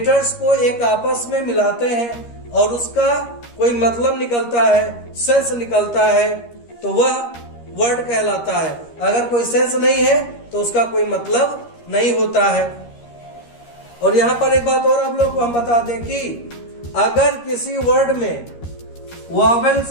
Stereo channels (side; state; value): right; late; 13 ms